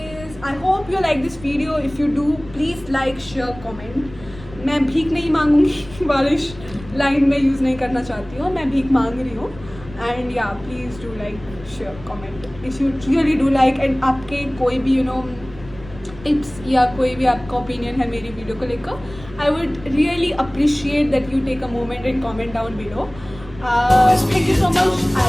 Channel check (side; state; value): left; noise; rumble, 18 dB below the sound